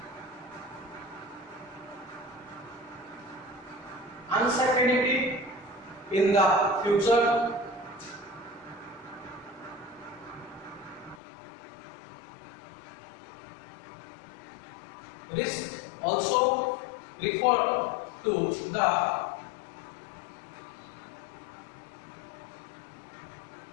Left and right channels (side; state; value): right; drops out; at 11.2 s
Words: uncertainty in the future, risk also refer to the